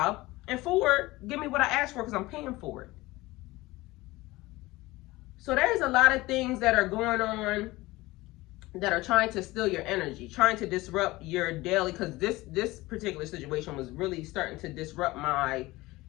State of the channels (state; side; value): quieter; right; 20.0 dB